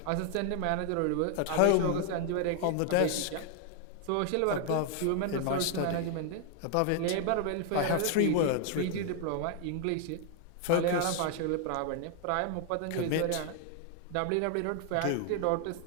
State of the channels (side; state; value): both; different; correlation 0.00